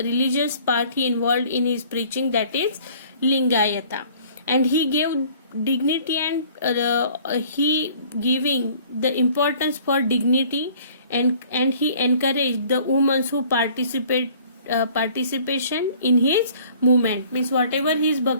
part he involved in his preaching, that is Lingayata, and he gave dignity and he giving the importance for dignity, and he encouraged the women who participation in his movement. Means whatever his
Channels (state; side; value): inverted; both; correlation -0.53